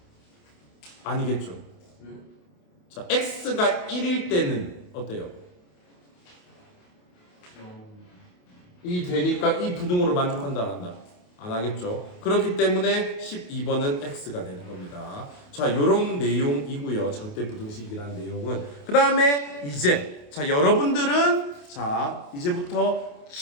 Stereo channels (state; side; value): late; right; 28 ms